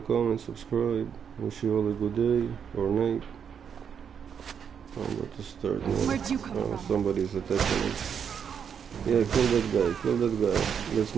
comment, subscribe. Wish you all a good day or night. I'm about to start now. Where'd you come from? Somebody's attacking me. Yeah, kill that guy. That's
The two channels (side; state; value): left; quieter; 7.5 dB